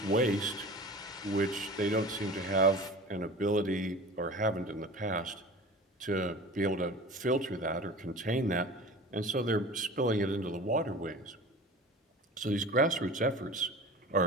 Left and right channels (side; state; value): both; normal; correlation 0.38